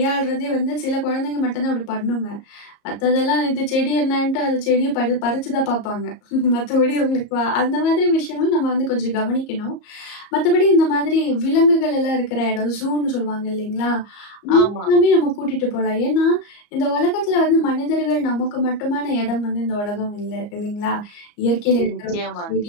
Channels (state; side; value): late; right; 34 ms